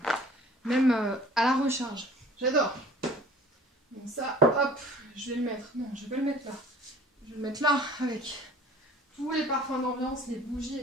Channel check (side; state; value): both; normal; correlation 0.49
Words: la recharge. J'adore. Donc ça, hop, je vais le mettre. Non, je vais pas le mettre là. Je vais le mettre là avec tous les parfums d'ambiance, les bougies,